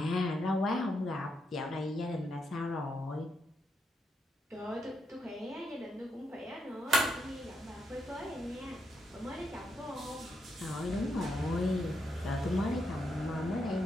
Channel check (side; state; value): both; normal; correlation 0.81